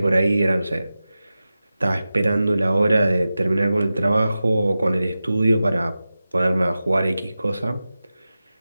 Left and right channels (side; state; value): both; inverted; correlation -0.94